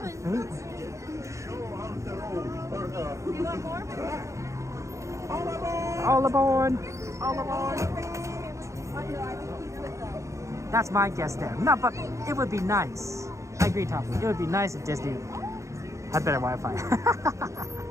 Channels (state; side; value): late; left; 0.15 ms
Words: want more? All aboard! All aboard! That's my guess there. No, but it would be nice. I agree, Toppy. It would be nice if Disney had better Wi-Fi.